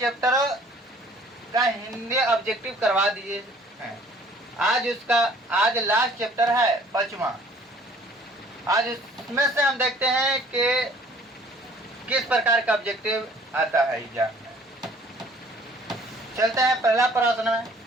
का हिंदी ऑब्जेक्टिव करवा दिए हैं। आज लास्ट चैप्टर है 5वां। आज इसमें से हम देखते हैं कि किस प्रकार का ऑब्जेक्टिव आता है एग्जाम में। चलते हैं पहला प्रश्न में,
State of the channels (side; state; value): both; normal; correlation 0.55